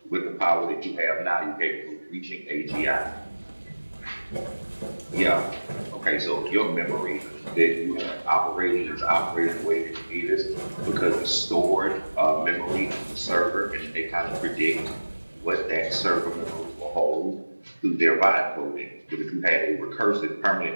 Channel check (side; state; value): both; inverted; correlation -1.00